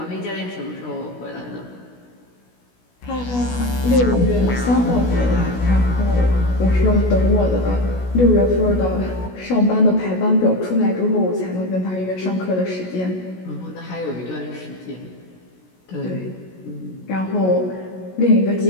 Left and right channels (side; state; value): right; late; 16 ms